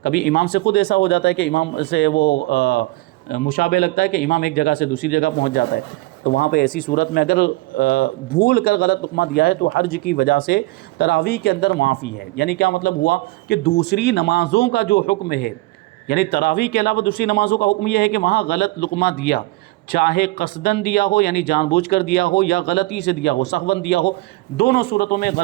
کبھی امام سے خود ایسا ہو جاتا ہے کہ امام سے وہ مشابہ لگتا ہے کہ امام ایک جگہ سے دوسری جگہ پہنچ جاتا ہے. تو وہاں پہ ایسی صورت میں اگر بھول کر غلط لقمہ دیا ہے تو حرج کی وجہ سے تراویح کے اندر معافی ہے. یعنی کیا مطلب ہوا کہ دوسری نمازوں کا جو حکم ہے، یعنی تراویح کے علاوہ دوسری نمازوں کا حکم یہ ہے کہ وہاں غلط لقمہ دیا، چاہے قصدن دیا ہو یعنی جان بوجھ کر دیا ہو یا غلطی سے دیا ہو، سہون دیا ہو، دونوں صورتوں میں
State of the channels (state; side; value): quieter; left; 20.4 dB